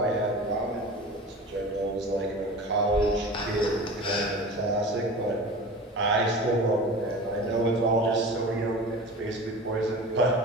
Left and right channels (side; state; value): both; normal; correlation 0.35